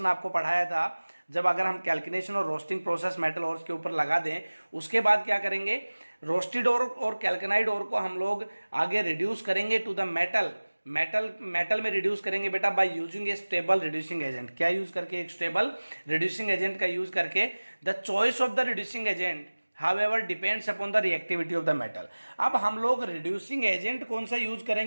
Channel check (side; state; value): both; inverted; correlation -1.00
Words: आपको पढ़ाया था, जब अगर हम कैल्किनेशन और रोस्टिंग प्रोसेस मेटल ओर के ऊपर लगा दें, उसके बाद क्या करेंगे, रोस्टेड और कैल्कनाइड ओर को हम लोग आगे रिड्यूस करेंगे टू द मेटल में रिड्यूस करेंगे बेटा bye using a stable reducing agent. क्या यूज करके, एक स्टेबल रिड्यूसिंग एजेंट का यूज करके। The choice of the reducing agent however depends upon the reactivity of the metal। अब हम लोग रिड्यूसिंग एजेंट कौन सा यूज